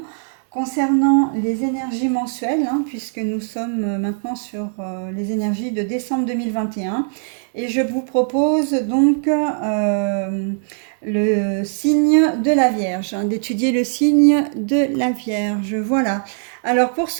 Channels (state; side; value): silent; left; digital silence